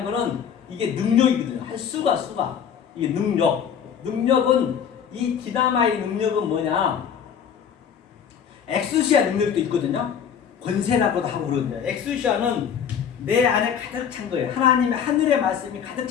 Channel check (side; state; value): right; quieter; 7.9 dB